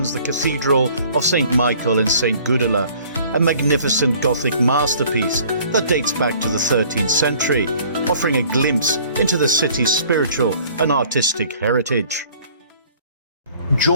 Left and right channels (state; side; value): inverted; both; correlation -0.54